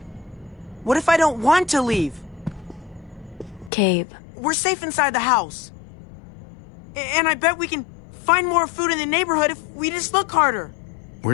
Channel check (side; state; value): right; drops out; at 3.7 s